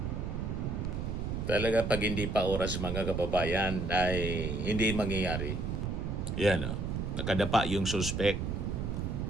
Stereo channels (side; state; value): right; noise; rumble, 2 dB below the sound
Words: Talaga pag hindi pa oras mga kababayan ay hindi mangyayari. Yan nakadapa yung suspect.